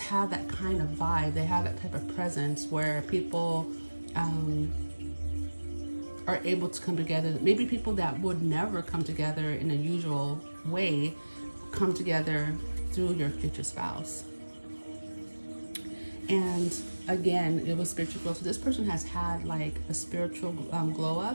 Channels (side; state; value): both; inverted; correlation -1.00